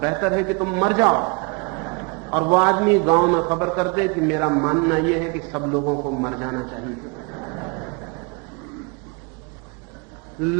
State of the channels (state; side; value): quieter; left; 32.1 dB